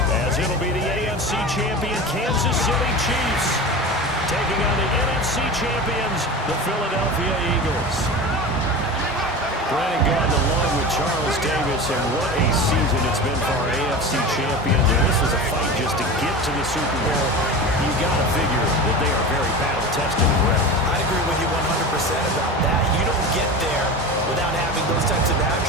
as it'll be the AFC champion Kansas City Chiefs taking on the NFC champions, the Philadelphia Eagles. Brandon Gordon along with Charles Davis, and what a season it's been for our AFC champions. And this is a fight just to get to the Super Bowl. You got to figure that they are very battle-tested and ready. I agree with you 100% about that. You don't get there without having those types of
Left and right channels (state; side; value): normal; both; correlation 0.30